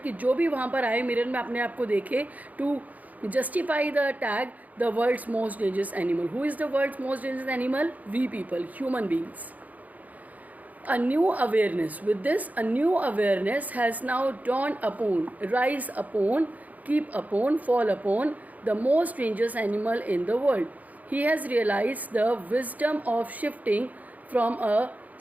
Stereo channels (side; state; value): left; late; 0.077 ms